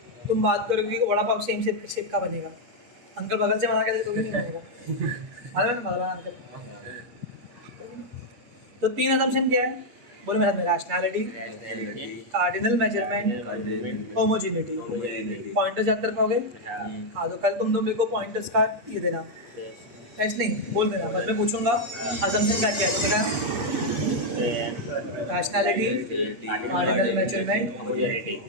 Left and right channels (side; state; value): left; late; 8.5 ms